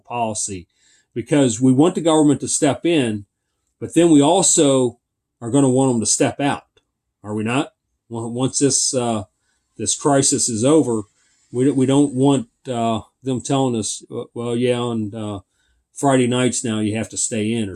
because we want the government to step in, but then we also are going to want them to step out. Are we not? Once this crisis is over, we don't want them telling us, well, yeah, on Friday nights now you have to stay in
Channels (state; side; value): identical; both; correlation 1.00